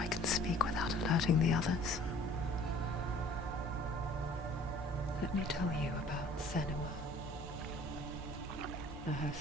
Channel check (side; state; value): both; normal; correlation 0.52